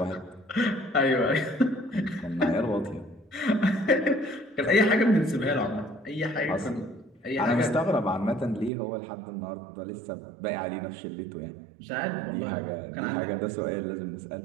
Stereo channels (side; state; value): left; drops out; at 8.7 s